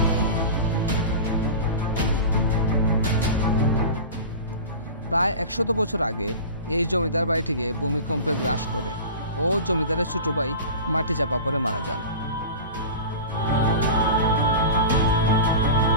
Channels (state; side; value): inverted; both; correlation -0.33